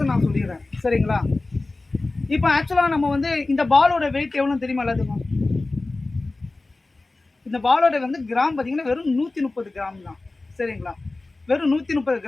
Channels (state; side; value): quieter; right; 3.2 dB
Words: நான் சொல்லிடுறேன். சரிங்களா? இப்போ ஆக்சுவலாக நம்ம வந்து இந்த பாலோட வெயிட் எவ்வளோன்னு தெரியுமா எல்லாத்துக்கும்? இந்த பாலோட வந்து கிராம் பார்த்தீங்கன்னா வெறும் 130 கிராம் தான். சரிங்களா? வெறும் 130